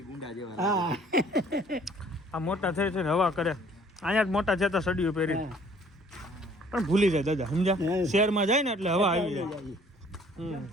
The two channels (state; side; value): normal; both; correlation 0.56